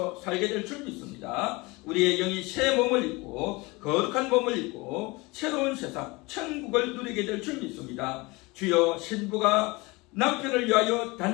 살게 될 줄 믿습니다. 우리의 영이 새 몸을 입고 거룩한 몸을 입고 새로운 세상 천국을 누리게 될 줄 믿습니다. 주여 신부가 남편을 위하여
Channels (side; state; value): right; quieter; 24.2 dB